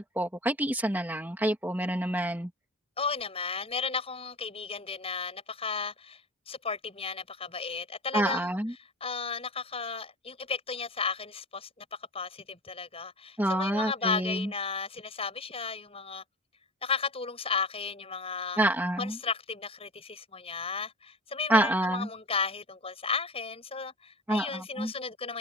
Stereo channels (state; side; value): normal; both; correlation 0.35